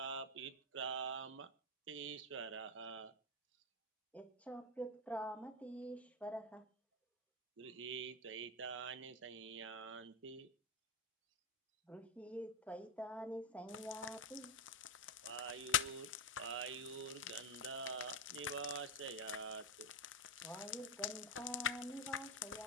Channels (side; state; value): both; normal; correlation 0.10